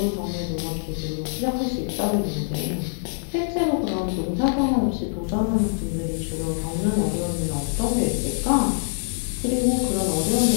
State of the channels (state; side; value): silent; right; digital silence